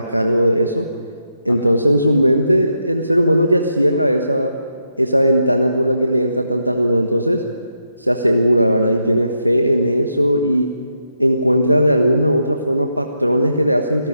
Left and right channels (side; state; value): both; inverted; correlation -0.82